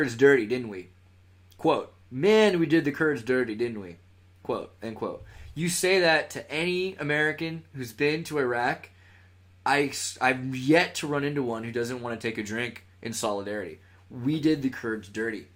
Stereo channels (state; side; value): identical; both; correlation 1.00